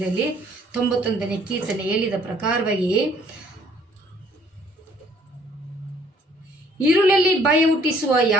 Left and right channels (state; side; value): normal; both; correlation 0.60